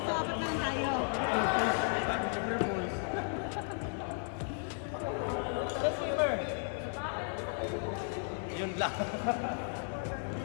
So, apat na lang tayo. Yun lang.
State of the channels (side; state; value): right; silent; 55 dB below the other